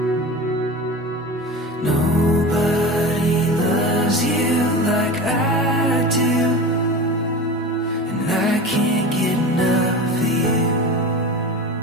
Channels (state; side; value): normal; both; correlation 0.31